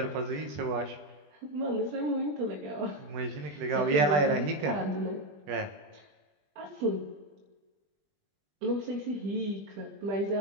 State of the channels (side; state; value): left; late; 20 ms